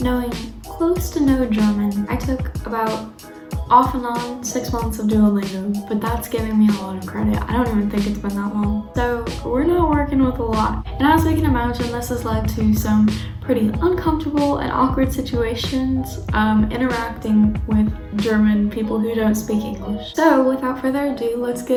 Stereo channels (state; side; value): identical; both; correlation 1.00